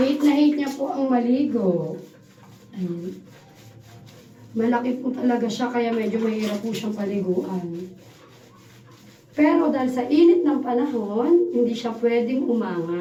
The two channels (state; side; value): identical; both; correlation 1.00